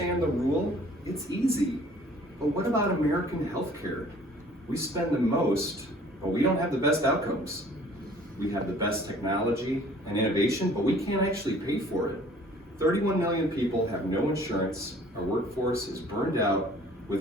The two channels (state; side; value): normal; both; correlation 0.53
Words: the rule, it's easy. But what about American healthcare? We spend the most, but we don't have the best outcomes. We have the best technology and innovation, but we can't actually pay for it. 31 million people have no insurance. Our workforce is burned out,